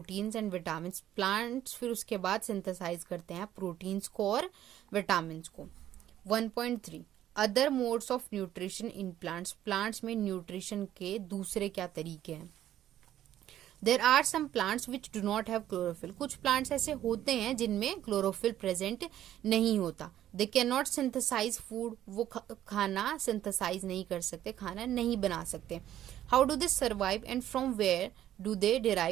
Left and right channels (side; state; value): left; quieter; 12.1 dB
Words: and vitamin. Plants फिर उसके बाद सिंथेसाइज करते हैं प्रोटीन्स को और विटामिन को। 1.3 other modes of nutrition in plants. Plants में न्यूट्रिशन के दूसरे क्या तरीके हैं? There are some plants which do not have chlorophyll. कुछ प्लांट्स ऐसे होते हैं जिनमें क्लोरोफिल प्रेजेंट नहीं होता। They can not synthesise food, वो खाना सिंथेसाइज नहीं कर सकते, खाना नहीं बना सकते। How do they survive and from where do they